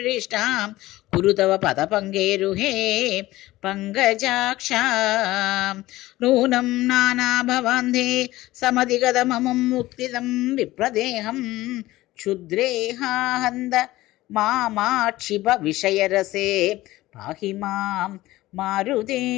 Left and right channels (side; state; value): right; quieter; 17.3 dB